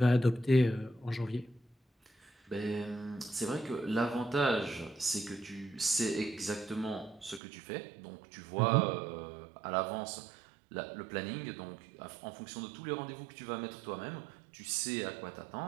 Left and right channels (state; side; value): drops out; left; at 7.4 s